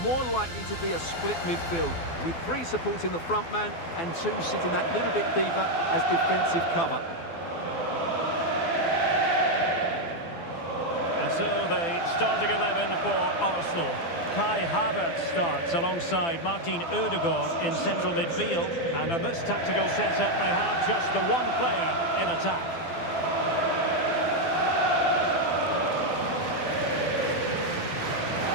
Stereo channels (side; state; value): right; late; 12 ms